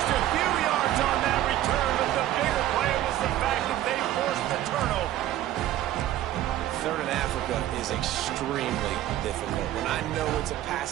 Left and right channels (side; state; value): left; quieter; 13.4 dB